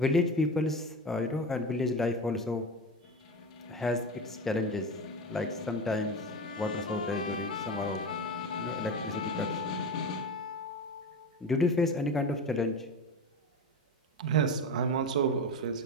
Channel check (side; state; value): both; normal; correlation 0.24